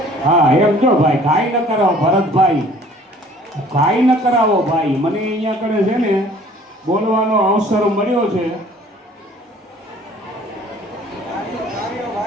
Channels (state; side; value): normal; both; correlation 0.53